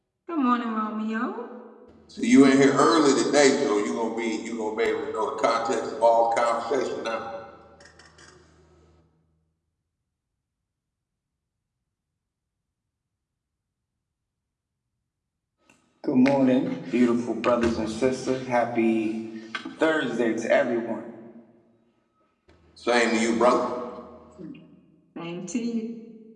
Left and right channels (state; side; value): identical; both; correlation 1.00